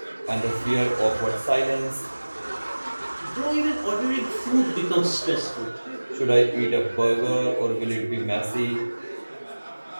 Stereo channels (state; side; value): inverted; both; correlation -1.00